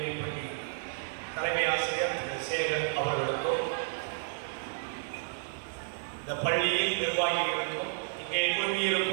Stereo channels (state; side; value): silent; left; digital silence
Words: பள்ளி தலைமை ஆசிரியர் திரு சேகர் அவர்களுக்கும் இந்த பள்ளியில் நிர்வாகிகளுக்கும் இங்கே